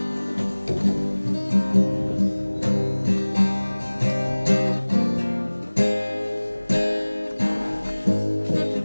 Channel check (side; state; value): both; inverted; correlation -1.00